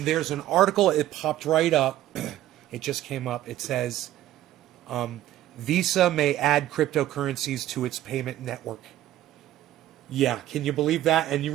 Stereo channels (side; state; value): left; quieter; 13.5 dB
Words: there's an article. It popped right up. It just came up. It says, Visa may add cryptocurrencies to its payment network. Yeah, can you believe that? And you